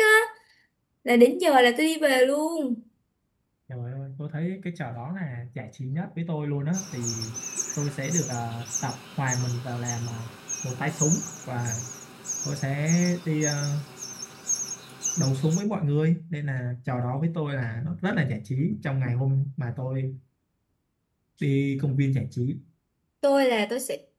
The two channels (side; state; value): both; identical; correlation 1.00